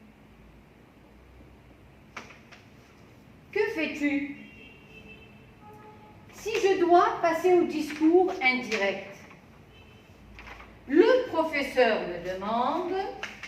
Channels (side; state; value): both; identical; correlation 1.00